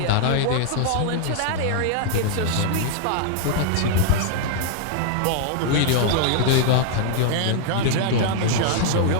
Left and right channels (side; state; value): both; different; correlation -0.01